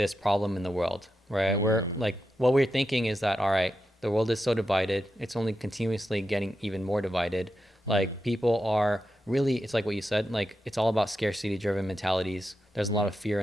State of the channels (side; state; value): both; normal; correlation 0.88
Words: problem in the world, right? We're like, what we're thinking is that, all right, the world is so divided, it's only continuously getting even more divided. Like, people are really, it's like what you said, like, it's all about scarcity driven mentalities. There's a lot of fear